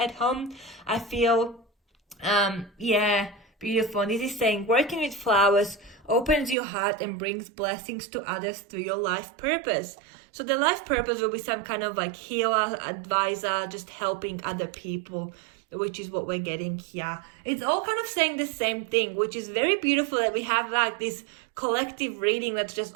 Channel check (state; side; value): drops out; left; at 6.6 s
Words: home, I feel. Beautiful. And this is saying working with flowers opens your heart and brings blessings to others through your life purpose. So the life purpose will be some kind of like healer, advisor, just helping other people, which is what we're getting here. It's all kind of saying the same thing, which is very beautiful that we have like this collective reading that's just